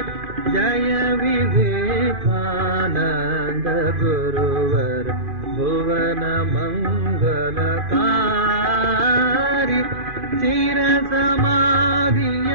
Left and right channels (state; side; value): late; left; 2.5 ms